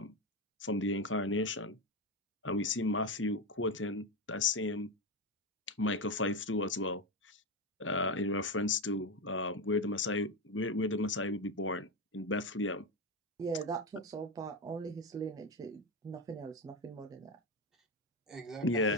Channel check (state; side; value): normal; both; correlation 0.13